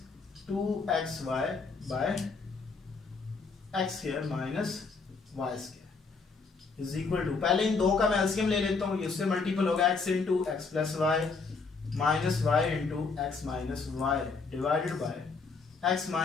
2xy by x square minus Y square is equal to, पहले इन दो का मैं एलसीएम ले लेता हूँ, इससे मल्टीपल होगा x into x plus Y minus y into x minus y divided by x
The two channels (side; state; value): right; quieter; 4.5 dB